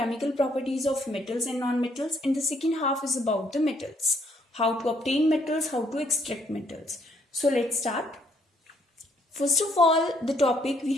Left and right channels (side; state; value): both; normal; correlation 0.68